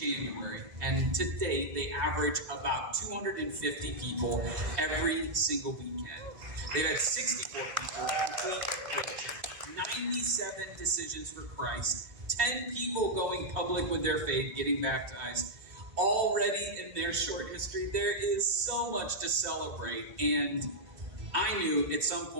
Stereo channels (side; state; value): left; late; 2.5 ms